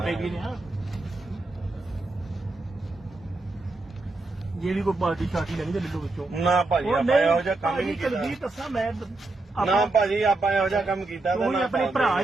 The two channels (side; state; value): left; quieter; 3.1 dB